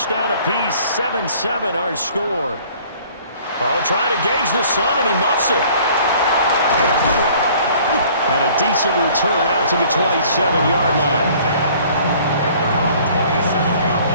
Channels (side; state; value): both; inverted; correlation -0.53